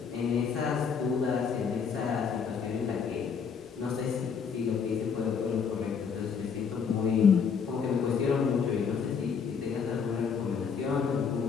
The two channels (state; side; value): quieter; right; 6.3 dB